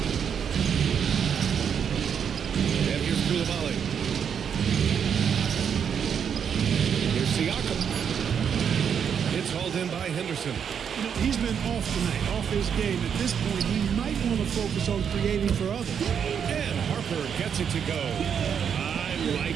And here's Koulibaly. Here's Siakam. It's hauled in by Henderson. You know, he's been off tonight, off his game. At this point, he might want to focus on creating for others. And Harper gets it to go. I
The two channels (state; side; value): quieter; left; 7.6 dB